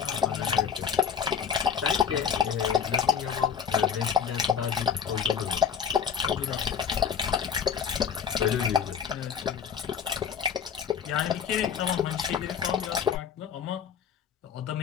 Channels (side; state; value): right; quieter; 7.2 dB